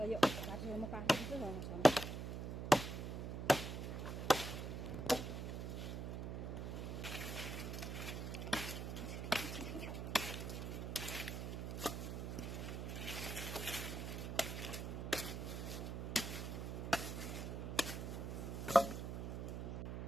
यो काटेर म काटिदिन्छु ओसार्नु।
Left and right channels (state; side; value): noise; right; hum, 4 dB below the sound